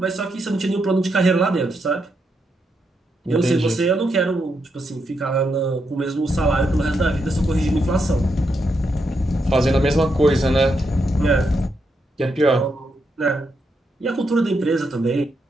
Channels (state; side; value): normal; both; correlation 0.81